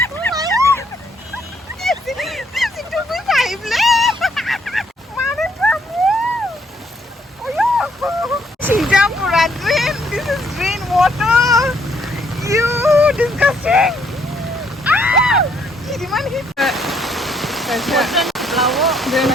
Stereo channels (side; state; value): both; normal; correlation 0.69